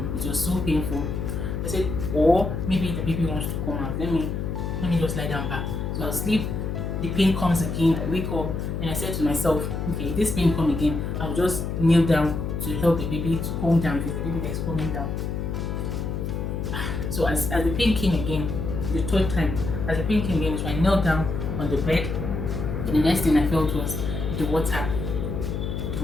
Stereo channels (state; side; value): noise; left; hum, 3 dB below the sound